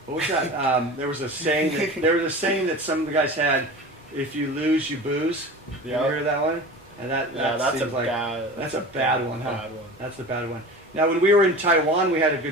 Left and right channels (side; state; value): both; normal; correlation 0.34